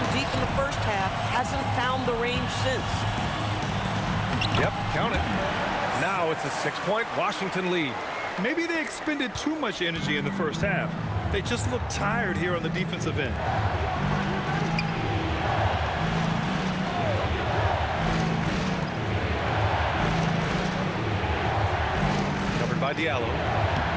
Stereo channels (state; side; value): identical; both; correlation 1.00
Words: deep in the first half. Hasn't found the range since. Yep, count it. Now it's a 6-point Washington lead. Maybe they expended too much energy in the first half. They just look tired here on the defensive end. Covered by Diallo.